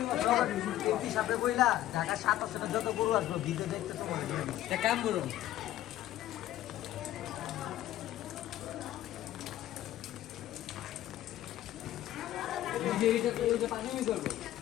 যত গরু আসবো ভিডিও দেখতে তোমার কাম করুন।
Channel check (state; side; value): quieter; right; 13.7 dB